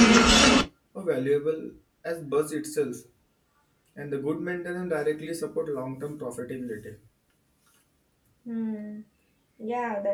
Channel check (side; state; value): both; identical; correlation 1.00